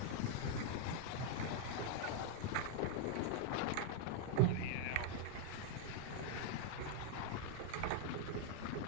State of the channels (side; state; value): both; different; correlation 0.00